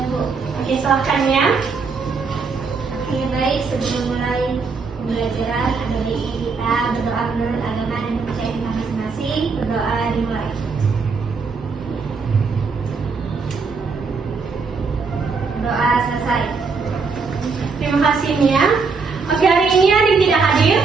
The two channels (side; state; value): left; quieter; 4.8 dB